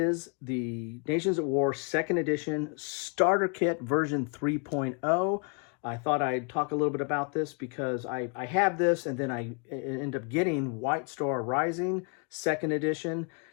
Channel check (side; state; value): right; quieter; 37.4 dB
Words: the Nations at War 2nd Edition Starter Kit version 3.0. I thought I'd talk a little bit about this because I have this and then I end up getting White Star Rising 2nd Edition.